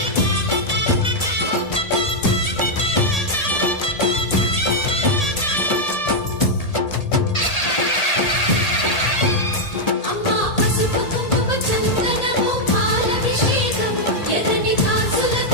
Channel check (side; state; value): right; late; 1.8 ms